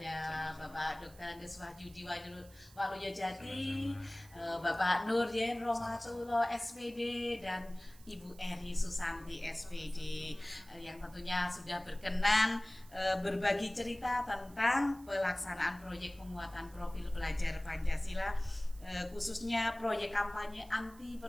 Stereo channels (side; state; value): right; noise; hiss, 23 dB below the sound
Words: Bapak Dr. Andes Wahyudi Waluyojati, Bapak Nuryen Romatullah SPD dan Ibu Eri Susanti SPD yang tentunya sudah berkenan berbagi cerita tentang pelaksanaan proyek penguatan profil pelajar Pancasila, khususnya proyek kampanye anti